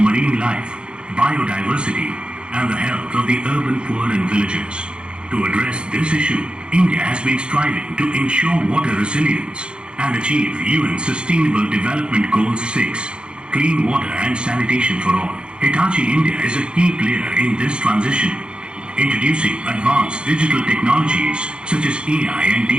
life, biodiversity, and the health of the urban poor and villagers. To address this issue, India has been striving to ensure water resilience and achieve UN Sustainable Development Goal 6, clean water and sanitation for all. Hitachi India is a key player in this transition, introducing advanced digital technologies such as AI and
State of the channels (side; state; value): left; late; 0.053 ms